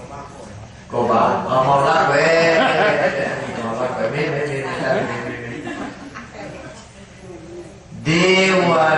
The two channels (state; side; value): identical; both; correlation 1.00